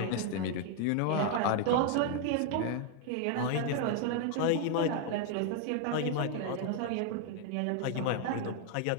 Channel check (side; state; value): both; different; correlation 0.00